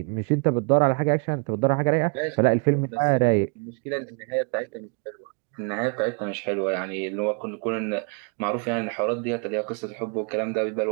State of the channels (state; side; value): quieter; left; 36.1 dB